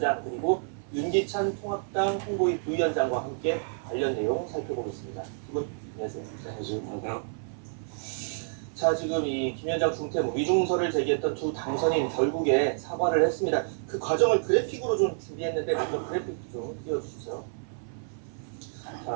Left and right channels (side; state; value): left; silent; 56 dB below the other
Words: 그리고 윤기찬 통합당 홍보위 부위원장과 함께 관련 내용 살펴보겠습니다. 두 분 안녕하세요. 안녕하세요. 자, 지금 이 김 위원장 중퇴 위중설을 제기했던 두 당선인 결국에 사과를 했습니다. 그 과정을 그래픽으로 좀 준비했는데 먼저 그래픽 좀 띄워주시죠.